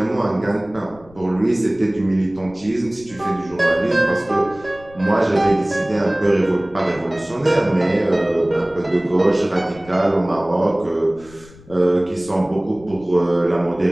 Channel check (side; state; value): left; noise; rumble, 23 dB below the sound